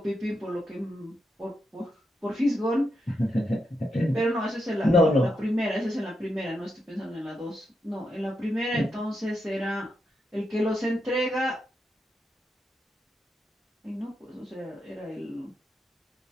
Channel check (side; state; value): both; normal; correlation 0.84